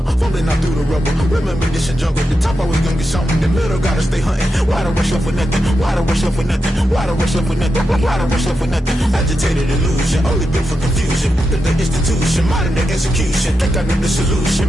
fumbling out through the rubble. Remember this in jungle, the top always gonna get something. The middle gotta stay hunting. Why the rush left for nothing? Why the rush left for nothing? Why the rush left for nothing? Why the rush left for nothing? Agitated illusion, only built for confusion. The institution, modern day execution. Think I know the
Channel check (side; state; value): both; normal; correlation 0.87